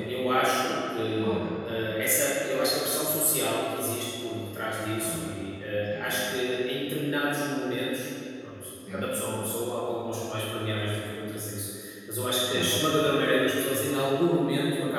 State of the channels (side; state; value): both; identical; correlation 1.00